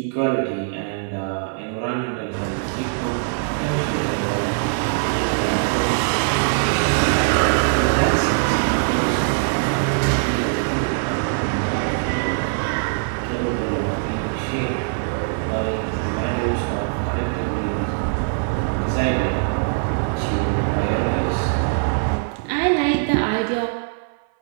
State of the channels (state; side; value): silent; left; 57 dB below the other